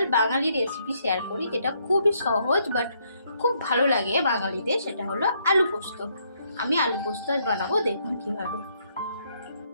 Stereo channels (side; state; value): both; inverted; correlation -0.72